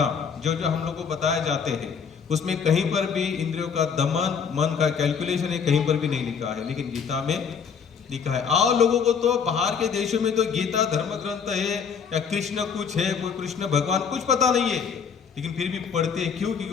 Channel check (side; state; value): right; quieter; 6.6 dB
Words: जो जो हम लोग को बताए जाते हैं, उसमें कहीं पर भी इंद्रियों का दमन, मन का कैलकुलेशन है कहीं पर भी नहीं लिखा है, लेकिन गीता में लिखा है। और लोगों को तो बाहर के देशों में तो गीता धर्म ग्रंथ है या कृष्ण कुछ है, कोई कृष्ण भगवान कुछ पता नहीं है, लेकिन फिर भी पढ़ते हैं। क्यों? क्योंकि